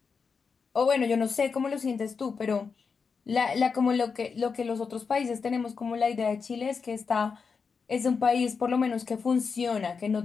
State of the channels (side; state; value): right; quieter; 5.4 dB